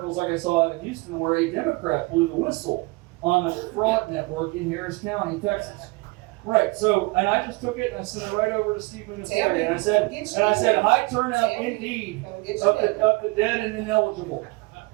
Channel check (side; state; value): left; quieter; 24.9 dB